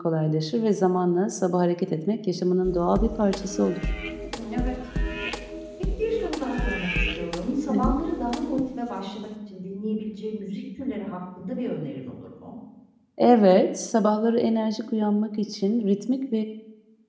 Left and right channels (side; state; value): both; identical; correlation 1.00